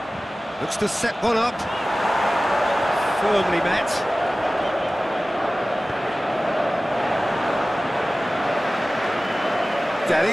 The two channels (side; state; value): both; normal; correlation 0.97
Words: Looks to set one up. Firmly met.